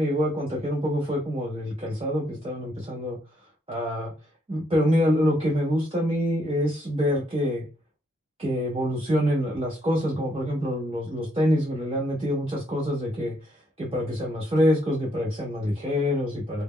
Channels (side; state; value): both; normal; correlation 0.73